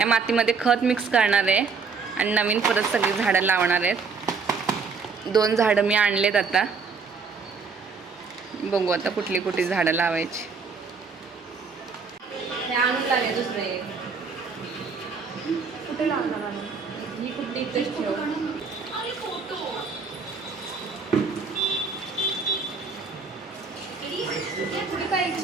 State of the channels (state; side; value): quieter; left; 5.0 dB